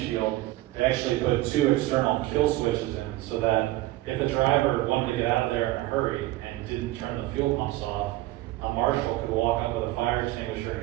they actually put 2 external kill switches in so that if a driver wanted to get out of there in a hurry and didn't turn the fuel pumps off, a marshal could walk up with a fire extinguisher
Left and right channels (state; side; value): quieter; left; 17.0 dB